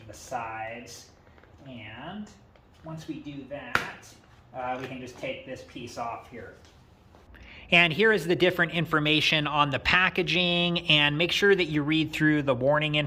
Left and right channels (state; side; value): identical; both; correlation 1.00